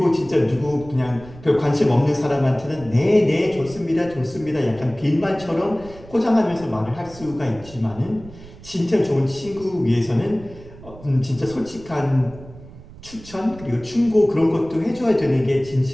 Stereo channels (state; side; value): noise; right; rumble, 18 dB below the sound